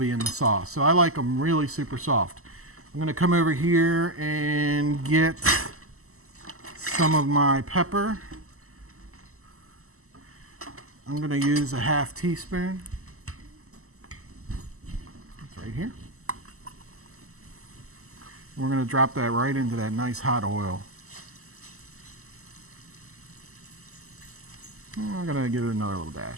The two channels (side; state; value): left; late; 0.63 ms